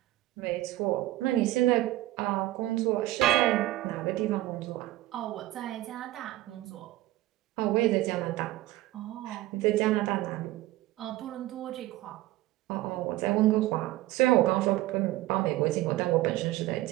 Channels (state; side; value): quieter; left; 16.8 dB